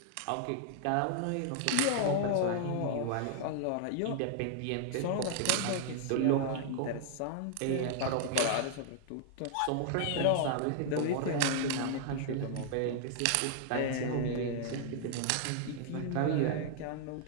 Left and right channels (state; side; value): different; both; correlation 0.00